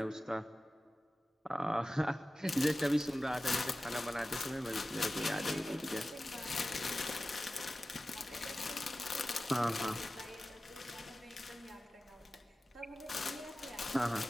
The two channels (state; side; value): normal; both; correlation 0.95